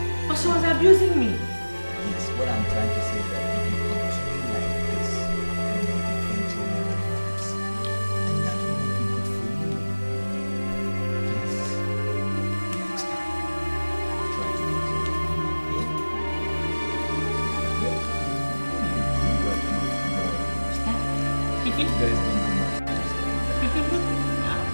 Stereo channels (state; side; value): inverted; both; correlation -1.00